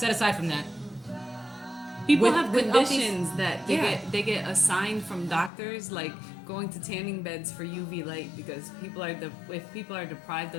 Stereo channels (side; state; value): right; drops out; at 5.5 s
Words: aside from that, People With- have with all these- conditions that they get assigned from doctors, like going to tanning beds for UV light, because if people are deprived